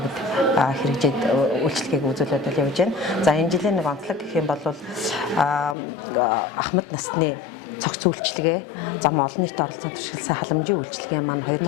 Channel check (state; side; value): drops out; right; at 5.8 s